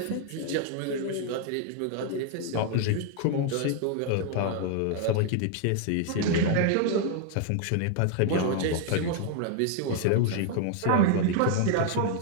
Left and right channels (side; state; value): both; different; correlation 0.00